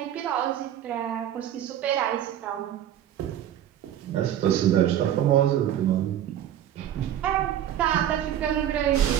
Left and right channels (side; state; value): left; quieter; 11.0 dB